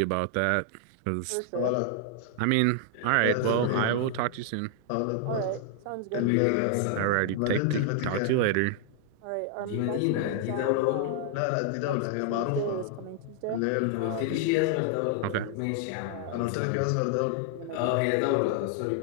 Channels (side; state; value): both; different; correlation 0.00